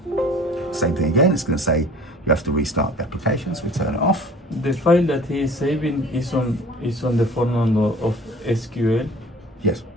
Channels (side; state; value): both; normal; correlation 0.47